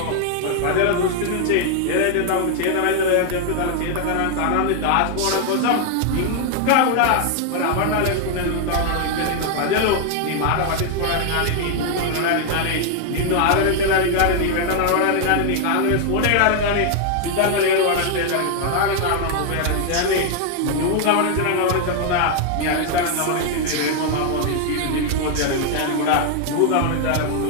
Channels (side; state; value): both; different; correlation 0.00